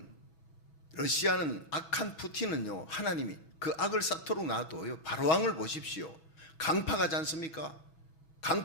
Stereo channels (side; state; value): right; late; 6.2 ms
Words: 러시아는 악한 푸틴은요 하나님이 그 악을 쌓도록 놔둬요. 바로왕을 보십시오. 강파가지 않습니까?